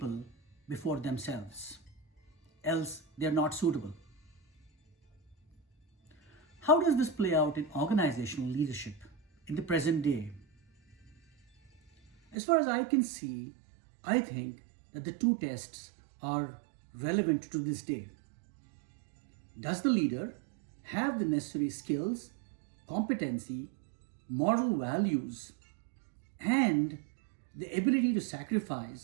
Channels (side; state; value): left; drops out; at 12.4 s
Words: before themselves. Else, they are not suitable. How does this play out in organizational leadership in the present day? As far as I can see, I think that the two tests are relevant to this day. Does the leader have the necessary skills, competency, moral values, and the ability to